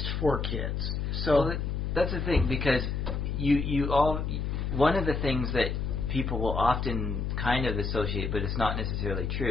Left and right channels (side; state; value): left; noise; hum, 2 dB below the sound